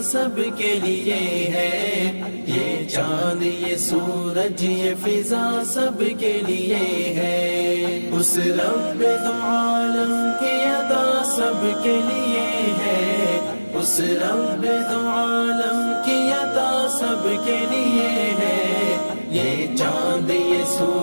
سب کے لیے ہے، یہ چاند یہ سورج یہ فضا سب کے لیے ہے، اس رب دو عالم کی عطا سب کے لیے ہے، اس رب دو عالم کی عطا سب کے لیے ہے، یہ چاند یہ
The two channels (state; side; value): inverted; both; correlation -1.00